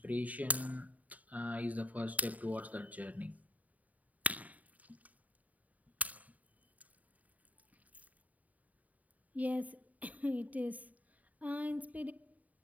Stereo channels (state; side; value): late; left; 0.073 ms